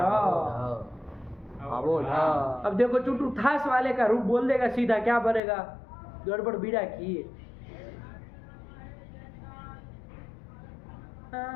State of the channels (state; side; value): drops out; right; at 5.4 s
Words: अवोढ। अब देखो चुटू थास वाले का रूप बोल देगा सीधा, क्या बनेगा? गड़बड़ बीड़ा की।